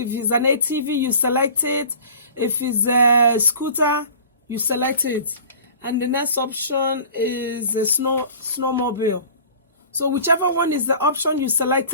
If it's an ATV, you select it. If it's a scooter, you select it. And the next option is a snowmobile. So whichever one is the option, you select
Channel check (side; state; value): both; inverted; correlation -0.43